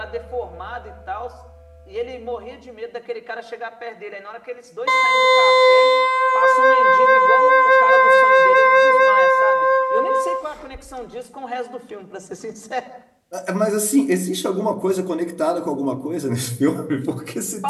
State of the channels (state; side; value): identical; both; correlation 1.00